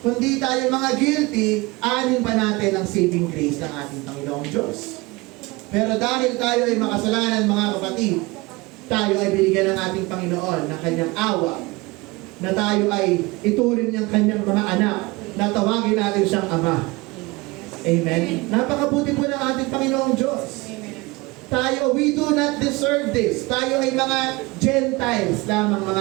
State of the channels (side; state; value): left; quieter; 23.5 dB